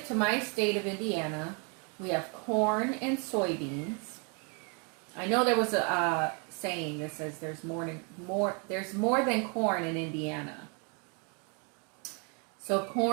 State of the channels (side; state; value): left; quieter; 35.8 dB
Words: to my state of Indiana, we have corn and soybeans. I know there was a saying that says there's more than corn in Indiana. So